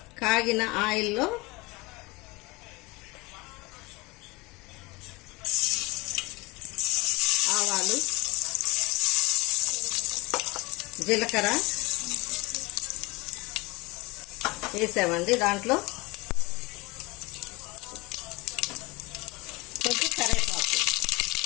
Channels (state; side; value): quieter; right; 23.9 dB